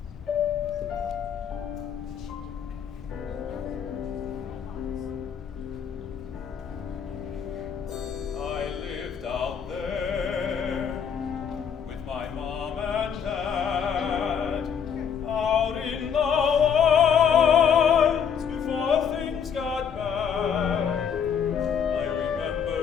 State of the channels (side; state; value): right; quieter; 7.5 dB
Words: I lived out there with my mom and dad, out in the wilds before things got bad. I remember